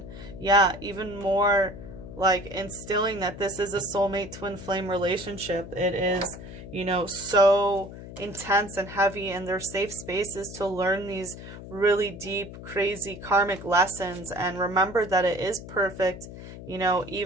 Yeah, even more like instilling that this is a soulmate twin flame relationship. It is, you know, so intense and heavy, and they're safe spaces to learn these really deep, crazy karmic lessons, and remember that it is perfect, you know,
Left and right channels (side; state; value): left; noise; hum, 13 dB below the sound